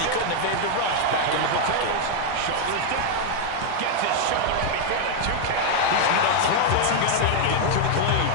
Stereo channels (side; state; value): both; different; correlation 0.00